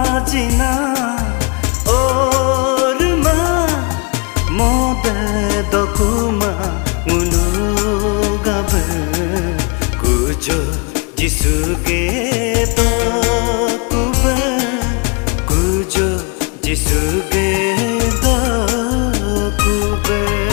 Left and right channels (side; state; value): right; quieter; 32.9 dB